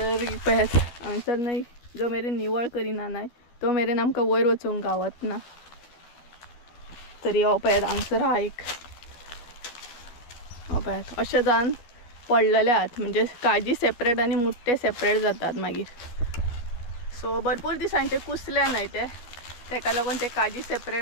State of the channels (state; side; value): late; right; 12 ms